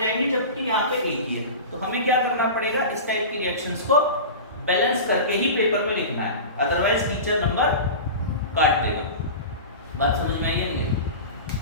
जबकि यहाँ पे एक ही है। तो हमें क्या करना पड़ेगा, इस टाइप की रिएक्शंस को बैलेंस करके ही पेपर में लिखना है, अदरवाइज टीचर नंबर काट देगा। बात समझ में आई है? ये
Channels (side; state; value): both; inverted; correlation -0.30